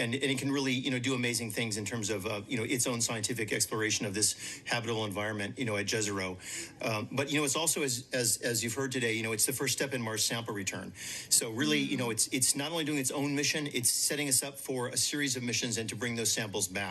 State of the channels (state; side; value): identical; both; correlation 1.00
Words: can really, do amazing things in terms of, its own scientific exploration of this habitable environment, at Jezero. But, it's also, as you've heard today, it's the first step in Mars sample return. So really, it's not only doing its own mission, it's setting us up for a series of missions and to bring those samples